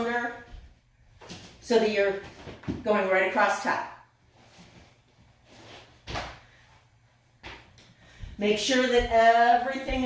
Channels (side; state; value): both; identical; correlation 1.00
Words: so that you're going right across top. Make sure that everything